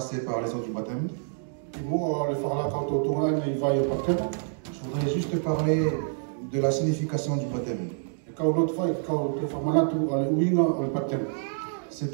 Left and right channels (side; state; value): left; silent; digital silence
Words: par les eaux du baptême, je voudrais juste parler de la signification du baptême.